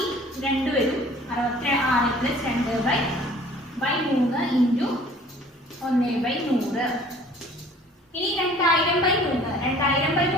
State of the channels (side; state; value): both; normal; correlation 0.51